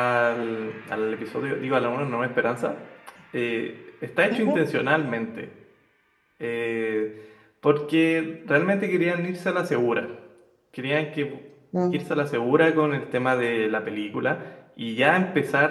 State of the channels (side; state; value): both; identical; correlation 1.00